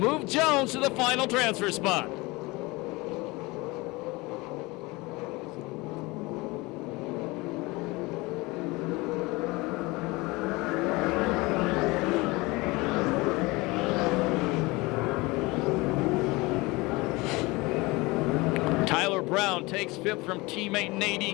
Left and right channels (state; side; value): quieter; right; 23.3 dB